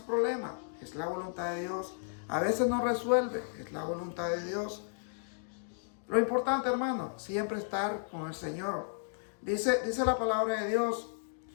es la voluntad de Dios. A veces no resuelve, es la voluntad de Dios. Lo importante, hermano, siempre estar con el Señor. Dice la palabra de Dios,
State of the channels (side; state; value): right; silent; digital silence